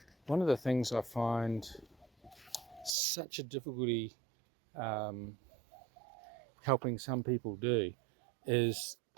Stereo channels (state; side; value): drops out; left; at 2.9 s